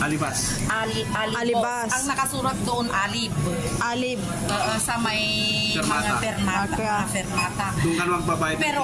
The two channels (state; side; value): identical; both; correlation 1.00